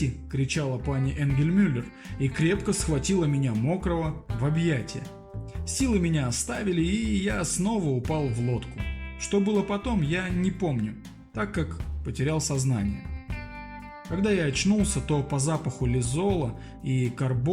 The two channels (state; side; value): identical; both; correlation 1.00